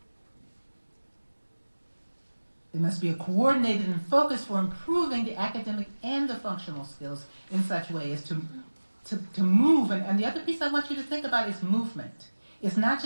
It must be a coordinated and focus for improving the academic and the functional skills in such a way as to move. And the other piece I want you to think about is movement. It's not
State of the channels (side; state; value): both; inverted; correlation -1.00